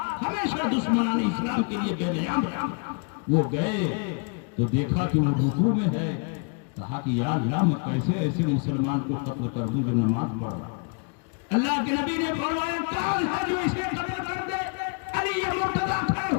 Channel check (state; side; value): quieter; right; 36.8 dB